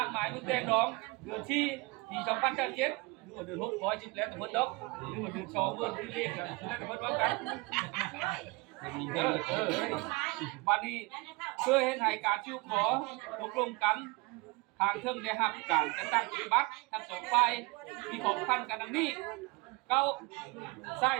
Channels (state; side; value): quieter; left; 25.8 dB